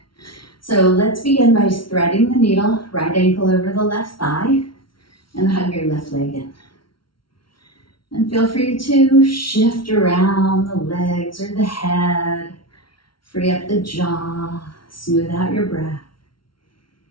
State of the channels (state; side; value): late; right; 0.74 ms